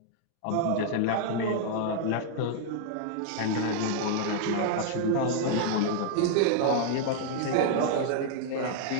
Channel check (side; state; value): both; different; correlation 0.00